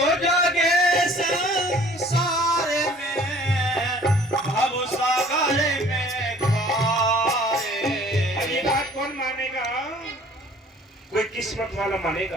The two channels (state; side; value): normal; both; correlation 0.53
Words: जागे संसार में भव सागर में कौन मानेगा? कोई किस्मत वाला